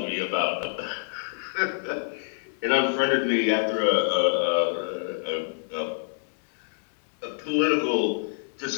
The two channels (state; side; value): silent; right; 60 dB below the other